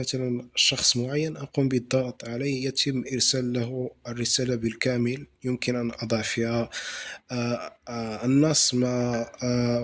شخص معين، أقوم بالضغط عليه، يتم إرسال له الرسالة بالكامل. يمكن أن أضع فيها النص مع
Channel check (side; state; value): both; identical; correlation 1.00